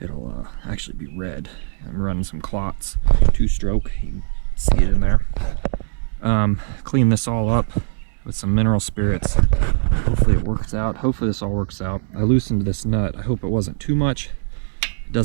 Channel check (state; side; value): silent; left; 65 dB below the other